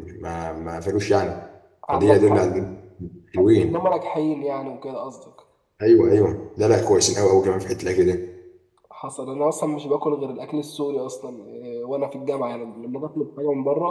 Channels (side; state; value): both; identical; correlation 1.00